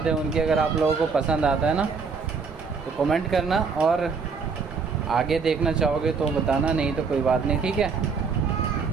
है उनकी। अगर आप लोगों को पसंद आता है ना तो कमेंट करना, और आगे देखना चाहोगे तो बताना, नहीं तो कोई बात नहीं, ठीक है।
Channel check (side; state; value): left; quieter; 5.2 dB